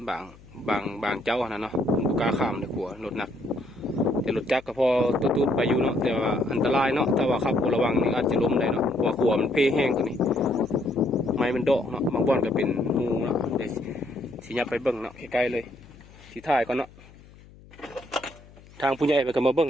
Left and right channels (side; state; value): left; noise; hum, 23 dB below the sound